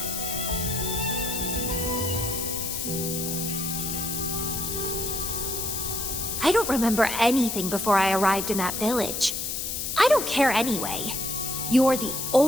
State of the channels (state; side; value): noise; left; hiss, 3 dB below the sound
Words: I don't remember anything before I arrived in that village. I don't care anyway. You're the